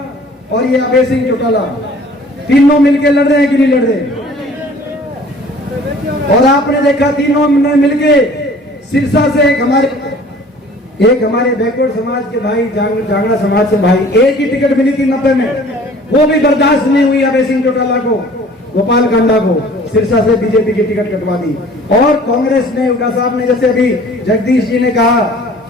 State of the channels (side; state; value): both; normal; correlation 0.50